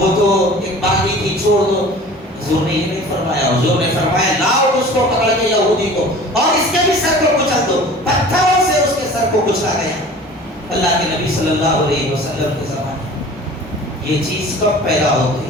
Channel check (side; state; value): both; normal; correlation 0.43